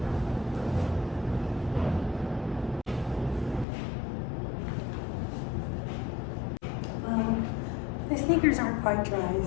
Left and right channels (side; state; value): right; drops out; at 3.7 s